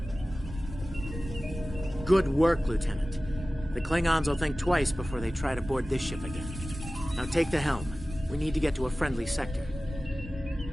Good work, Lieutenant. The Klingons will think twice before they try to board this ship again. Now take the helm. We need to get to a friendly sector.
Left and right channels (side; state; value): both; normal; correlation 0.97